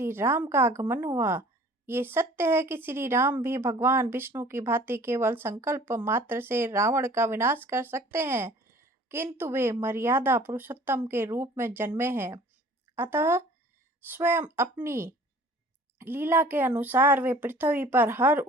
राम का आगमन हुआ। ये सत्य है कि श्री राम भी भगवान विष्णु की भांति केवल संकल्प मात्र से रावण का विनाश कर सकते हैं, किंतु वे मर्यादा पुरुषोत्तम के रूप में जन्मे हैं। अतः स्वयं अपनी लीला के अनुसार वे पृथ्वी पर हर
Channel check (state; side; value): normal; both; correlation 0.50